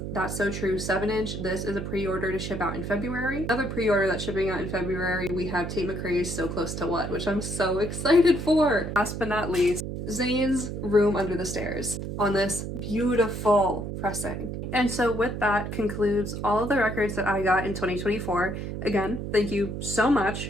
That's So True 7-inch. This is a pre-order to ship out in February. Another pre-order that's shipping out in February, we have Tate McRae's So Close to What, which I'm so excited for. Last but not least, Zayn's Room Under the Stairs on this beautiful pressing. And so with that concludes all of the records that I got in 2024. Again, thank you so much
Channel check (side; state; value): right; noise; hum, 5 dB below the sound